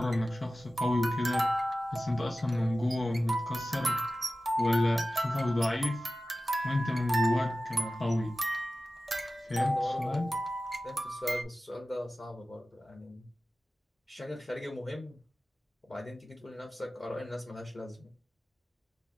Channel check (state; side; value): normal; both; correlation 0.95